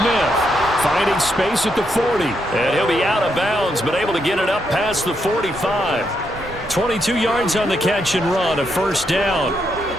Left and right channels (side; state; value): both; normal; correlation 0.79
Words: finding space at the 40. And he'll be out of bounds, but able to get it up past the 45. 22 yards on the catch and run, a first down.